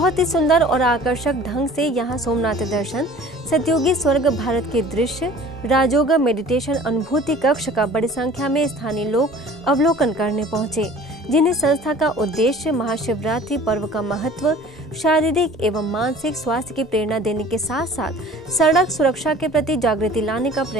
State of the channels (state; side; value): normal; both; correlation 0.47